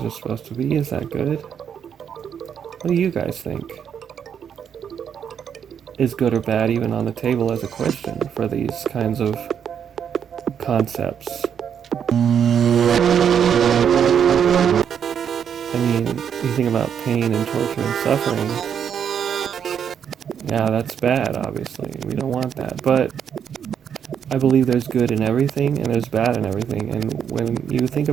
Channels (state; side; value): quieter; left; 8.1 dB